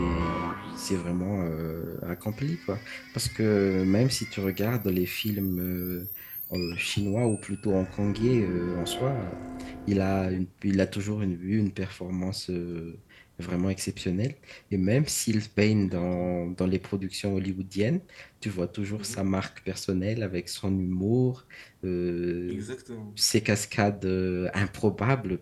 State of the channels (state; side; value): identical; both; correlation 1.00